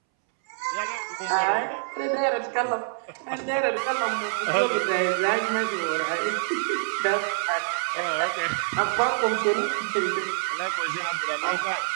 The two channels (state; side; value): silent; left; 61 dB below the other